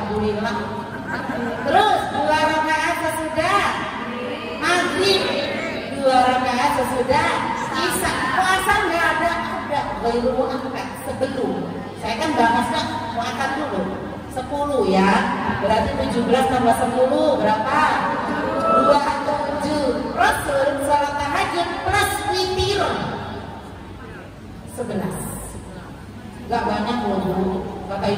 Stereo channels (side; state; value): both; identical; correlation 1.00